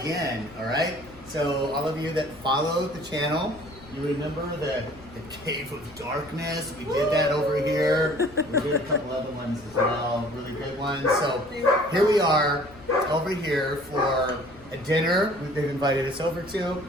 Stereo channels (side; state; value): left; noise; rumble, 22 dB below the sound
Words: all right? So all of you that follow the channel, you remember the Cave of Darkness? We did that over here. We did a couple other ones as well, really good ones. So here we are over here for a dinner they've invited us over to.